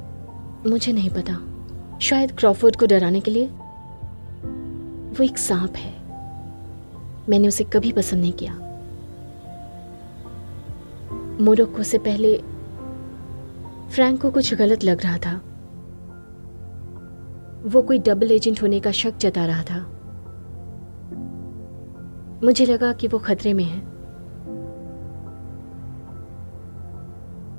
मुझे नहीं पता। शायद क्रॉफोर्ड को डराने के लिए। वो एक सांप है। मैंने उसे कभी पसंद नहीं किया। मोरक्को से पहले फ्रैंक को कुछ गलत लग रहा था। वो कोई डबल एजेंट होने का शक जता रहा था। मुझे लगा कि वो खतरे में है।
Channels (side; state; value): both; inverted; correlation -1.00